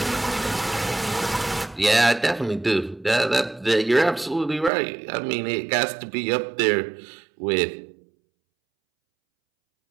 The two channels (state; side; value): drops out; left; at 4.7 s